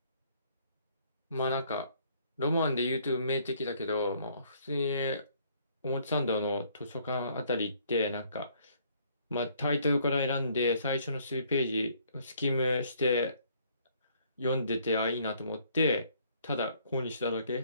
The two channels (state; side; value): inverted; both; correlation -0.64